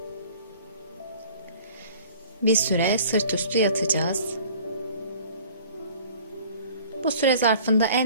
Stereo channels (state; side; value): inverted; both; correlation -0.49